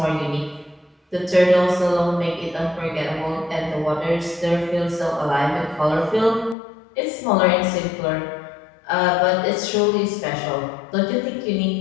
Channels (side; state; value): right; drops out; at 6.6 s